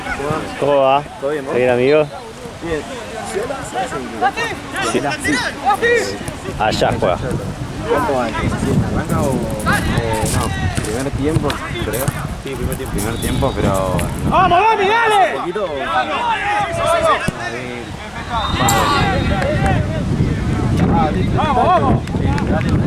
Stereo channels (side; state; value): both; identical; correlation 1.00